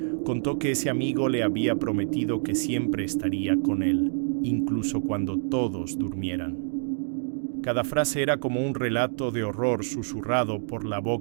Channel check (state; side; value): silent; left; digital silence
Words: contó que ese amigo le había prometido que siempre estaría con él, incluso cuando todos durmieran. Cada frase era como un relato de horror susurrado por la